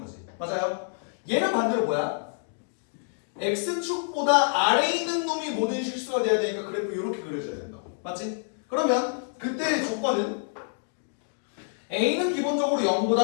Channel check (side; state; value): right; silent; digital silence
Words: 맞아요? 얘는 반대로 뭐야? x축보다 아래에 있는 놈이 모든 실수가 돼야 되니까 그래프 이렇게 그려줘야 된다. 맞지? 그러면 그때의 조건은 a는 기본적으로